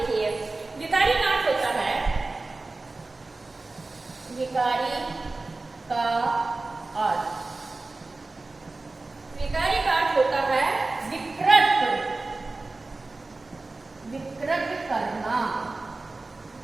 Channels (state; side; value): quieter; left; 3.3 dB